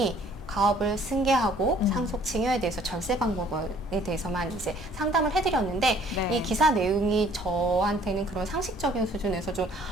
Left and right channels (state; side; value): normal; both; correlation 0.57